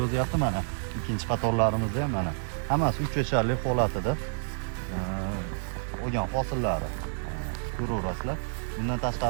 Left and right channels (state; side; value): silent; left; 59 dB below the other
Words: yozyapti mana. Ikkinchi qatorlarimizda ham mana. Hammasi 3 yasharlik holatida olgan hosillari ko'raverasizlar. Bundan